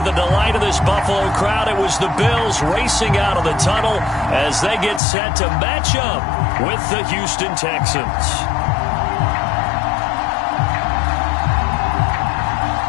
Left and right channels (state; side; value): drops out; right; at 5.0 s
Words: delight of this Buffalo crowd, it was the Bills racing out of the tunnel as they get set to match up with the Houston Texans.